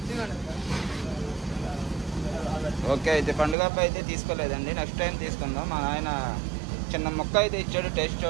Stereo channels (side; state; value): left; drops out; at 3.6 s